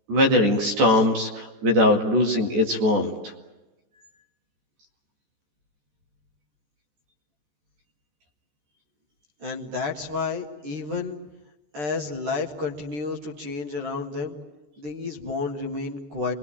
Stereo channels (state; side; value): late; left; 14 ms